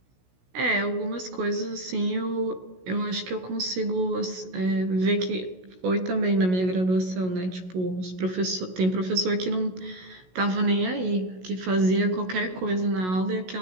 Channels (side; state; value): left; late; 16 ms